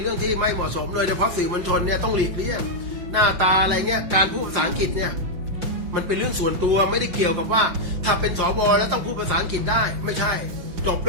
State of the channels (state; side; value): late; left; 5.7 ms